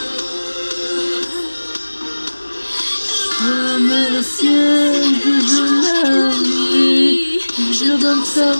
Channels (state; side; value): inverted; both; correlation -1.00